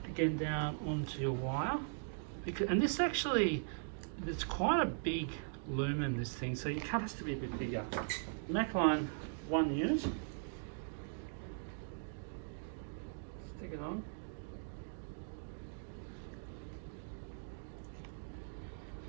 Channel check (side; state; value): left; silent; digital silence